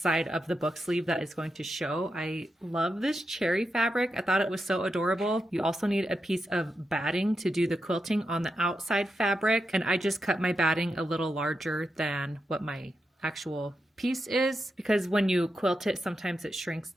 of the book sleeve that is going to show. I love this cherry fabric. I thought it was so adorable. You also need a piece of batting to do the quilting on the outside fabric. And I just cut my batting a little larger than what my actual piece is, because when you quilt it, sometimes it shrinks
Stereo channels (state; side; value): normal; both; correlation 0.87